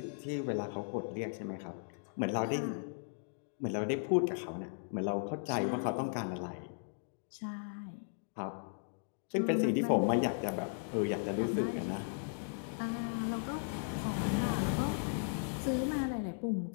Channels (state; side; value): silent; right; digital silence